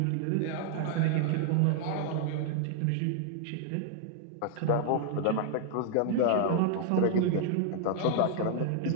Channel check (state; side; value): different; both; correlation 0.00